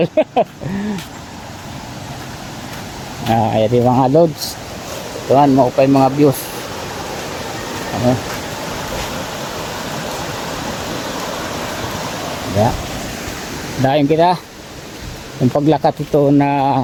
Ayan yung mga loads. Tuhan, maupay mga views. Ano? Yeah. Dahil kita yung paglakat ito na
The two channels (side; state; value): both; identical; correlation 1.00